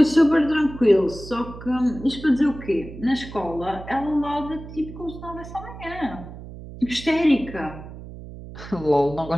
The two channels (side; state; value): right; noise; hum, 13 dB below the sound